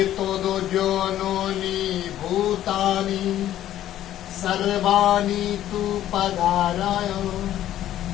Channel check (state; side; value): quieter; right; 12.4 dB